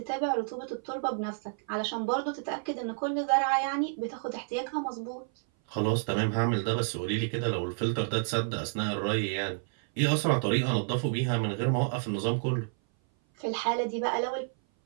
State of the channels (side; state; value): left; silent; 57 dB below the other